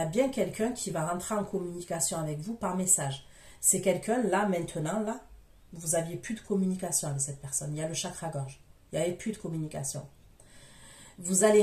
bien quelqu'un qui va rentrer en communication avec vous par message. C'est quelqu'un, là, maintenant, là, vous n'aviez plus de communication avec cette personne. Il y a le chakra-gorge. Il n'y avait plus de communication. Vous allez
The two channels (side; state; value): both; identical; correlation 1.00